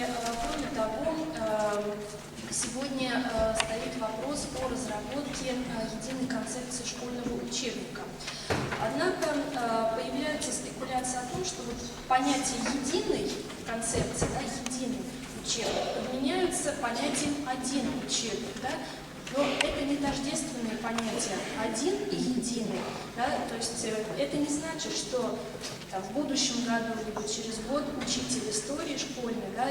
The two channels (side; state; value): both; identical; correlation 1.00